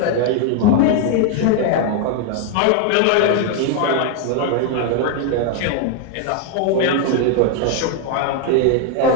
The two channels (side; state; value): both; different; correlation 0.00